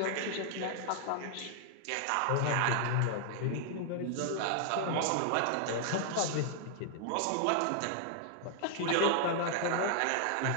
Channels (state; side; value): different; both; correlation 0.00